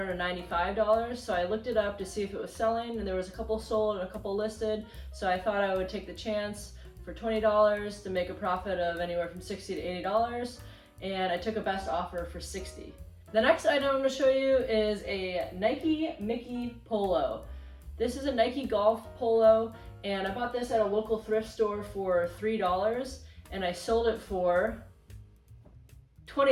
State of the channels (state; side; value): identical; both; correlation 1.00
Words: so I looked it up to see if it was selling, and there was a couple sold and a couple listed, so I thought I would take the chance for $20 to make a profit of anywhere from $60 to $80, and I took a best offer for $60. The next item I'm going to show you is a Nike Mickey polo. This is a Nike golf polo, and I bought this at a local thrift store for $3, and I sold it for